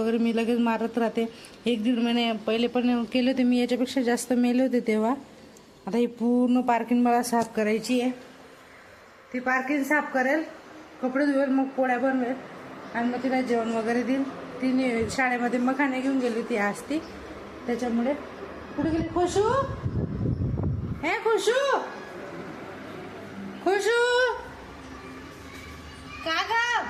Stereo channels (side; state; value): both; identical; correlation 1.00